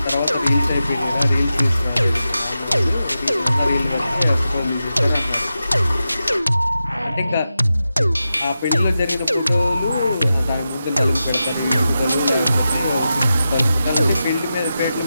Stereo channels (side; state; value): both; inverted; correlation -0.91